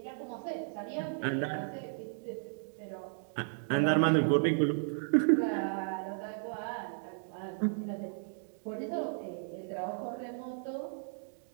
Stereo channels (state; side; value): silent; left; digital silence